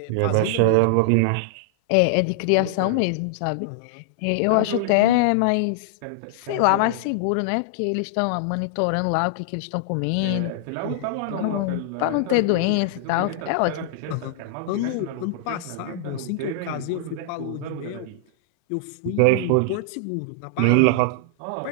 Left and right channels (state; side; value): different; both; correlation -0.01